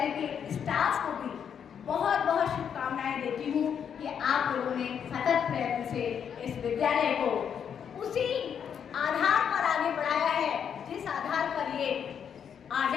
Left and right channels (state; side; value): quieter; right; 7.9 dB